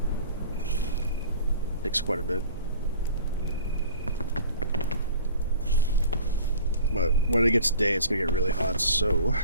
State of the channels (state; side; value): inverted; both; correlation -0.44